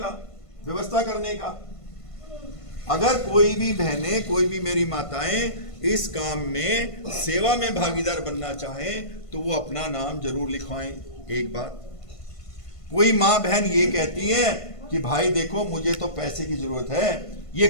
व्यवस्था करने का। अगर कोई भी बहनें, कोई भी मेरी माताएं इस काम में सेवा में भागीदार बनना चाहें तो वो अपना नाम जरूर लिखवाएं। एक बात, कोई माँ बहन ये कहती है कि भाई देखो मुझे तो पैसे की जरूरत है, ये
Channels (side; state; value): right; late; 1.5 ms